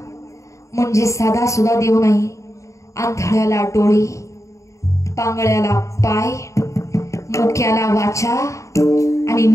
म्हणजे साधा सुद्धा देव नाही. आंधळ्याला डोळे, पांगळ्याला पाय, मुक्याला वाचा आणि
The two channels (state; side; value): late; right; 0.15 ms